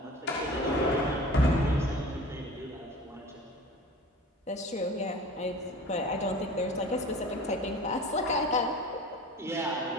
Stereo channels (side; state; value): both; normal; correlation 0.40